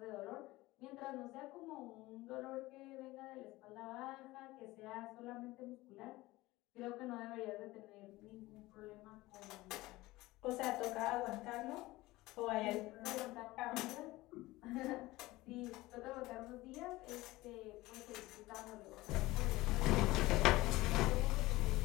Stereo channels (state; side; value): quieter; right; 19.1 dB